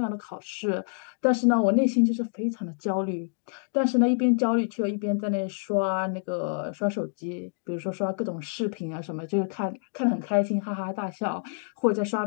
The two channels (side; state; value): right; silent; digital silence